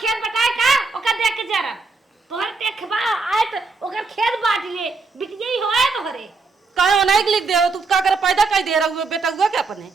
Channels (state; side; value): quieter; left; 4.1 dB